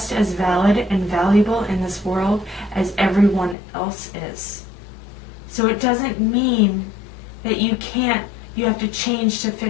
as valid and valuable in this world as everyone else is. So it doesn't mean that you have to change to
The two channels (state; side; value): drops out; right; at 3.6 s